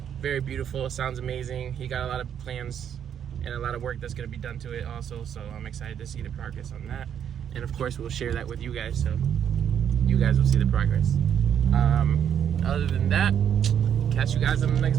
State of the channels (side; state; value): left; quieter; 8.8 dB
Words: Very beautiful. Sounds amazing. He got a lot of plans and a lot of work that's going to be done to it also. So I'm excited to see the progress on that. And of course, we'll share that with you guys. So guys will see the progress. Other than that, catch you guys in the